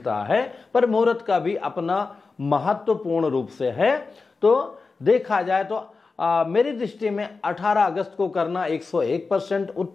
है। पर मुहूर्त का भी अपना महत्वपूर्ण रूप से है। तो देखा जाए तो मेरी दृष्टि में 18 अगस्त को करना 101%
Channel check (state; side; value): quieter; right; 4.2 dB